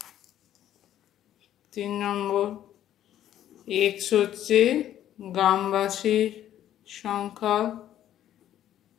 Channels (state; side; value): quieter; right; 11.6 dB